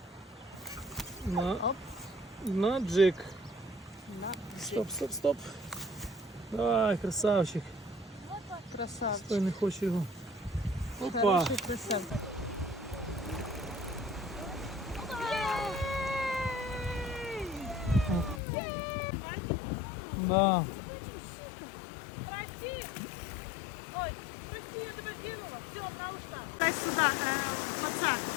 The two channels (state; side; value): drops out; right; at 18.4 s